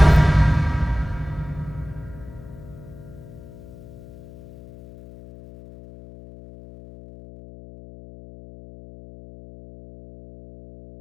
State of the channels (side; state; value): left; noise; hum, 18 dB below the sound